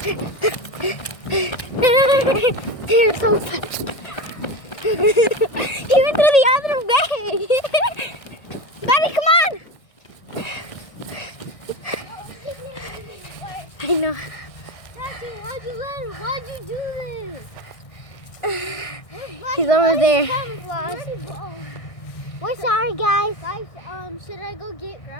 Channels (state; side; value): late; right; 1.6 ms